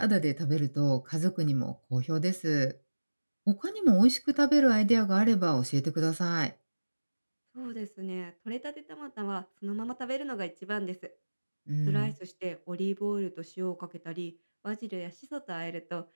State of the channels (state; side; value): inverted; both; correlation -1.00